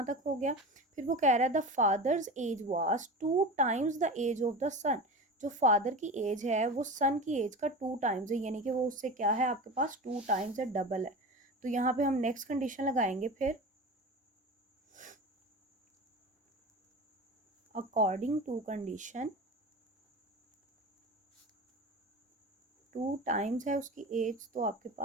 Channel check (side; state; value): both; normal; correlation 0.29